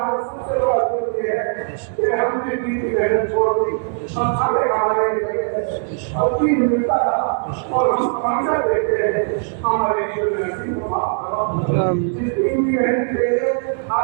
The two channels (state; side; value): silent; left; 66 dB below the other